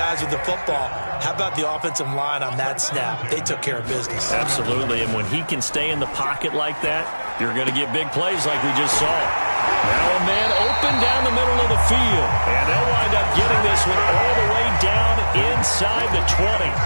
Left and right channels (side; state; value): both; inverted; correlation -1.00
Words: with the football. How about the offensive line on that snap? They took care of business. Absolutely, and when he can stay in the pocket like that, you're going to get big plays like we just saw. Now a man open down the middle of the field, and they'll wind up getting this one all the way down inside the 20.